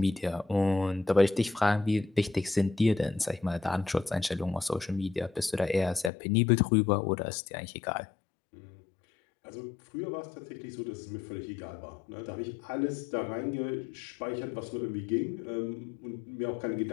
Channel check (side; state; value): right; drops out; at 6.1 s